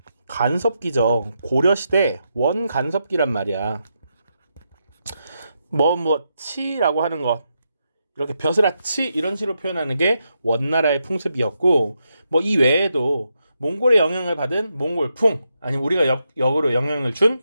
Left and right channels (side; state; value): both; inverted; correlation -0.83